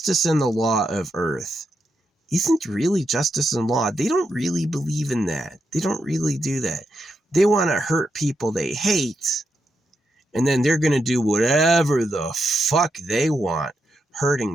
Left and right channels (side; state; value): both; normal; correlation 0.84